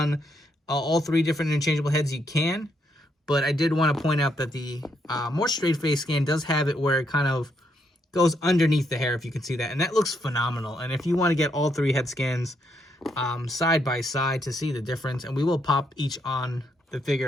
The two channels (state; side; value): normal; both; correlation 0.76